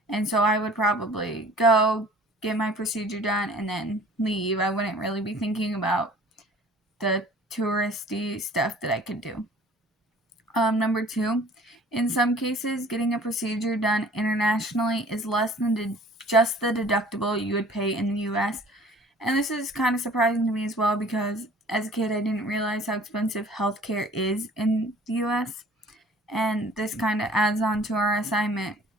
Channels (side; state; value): both; normal; correlation 0.49